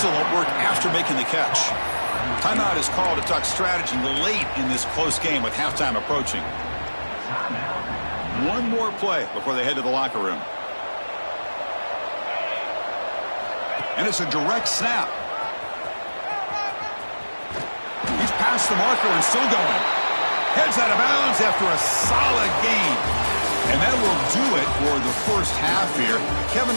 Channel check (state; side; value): inverted; both; correlation -1.00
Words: work after making the catch. Timeout is called to talk strategy late in this close game with halftime approaching. One more play before they head to the locker room. And it's a direct snap. He's past the marker and still going. Heads out of bounds after a solid gain. And that will do it for the first half here. Kevin